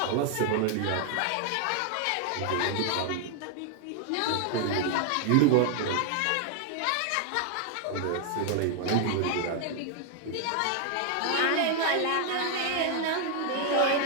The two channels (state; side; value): different; both; correlation 0.00